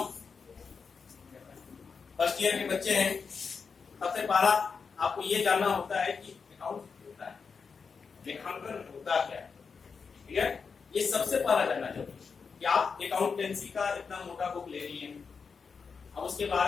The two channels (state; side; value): quieter; right; 5.5 dB